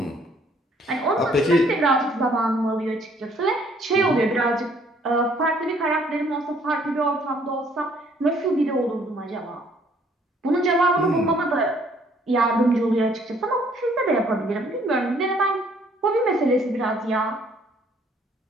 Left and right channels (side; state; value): both; normal; correlation 0.62